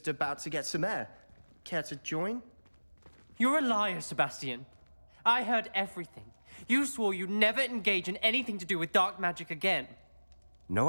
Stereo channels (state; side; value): inverted; both; correlation -1.00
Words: about to get some air. Care to join? You're a liar, Sebastian. I heard everything. You swore you'd never engage in anything to do with dark magic again. No,